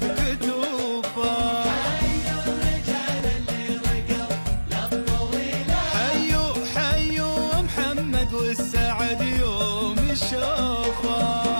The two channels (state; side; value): inverted; both; correlation -1.00